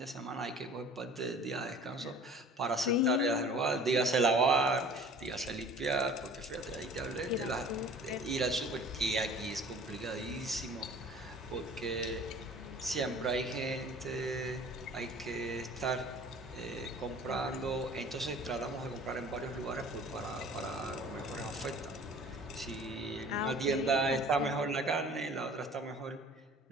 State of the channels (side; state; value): both; normal; correlation 0.47